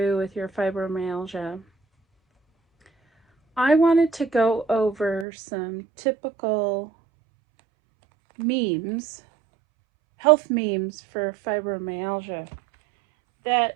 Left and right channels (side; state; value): left; drops out; at 5.2 s